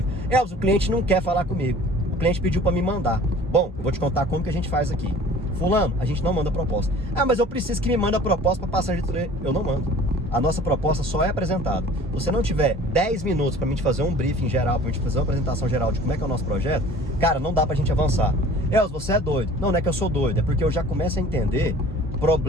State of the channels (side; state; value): both; normal; correlation 0.47